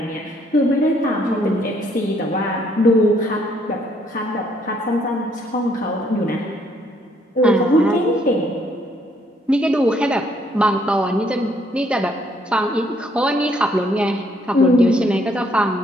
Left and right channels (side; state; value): both; normal; correlation 0.68